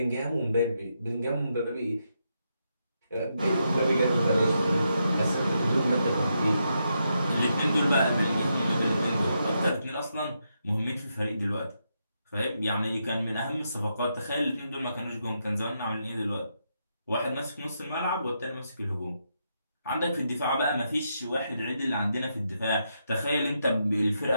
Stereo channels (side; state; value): both; inverted; correlation -0.82